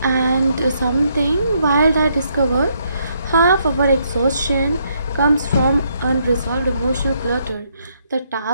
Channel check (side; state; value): both; inverted; correlation -0.73